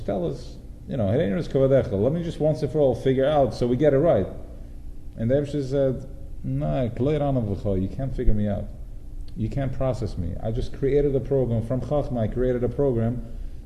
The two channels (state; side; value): identical; both; correlation 1.00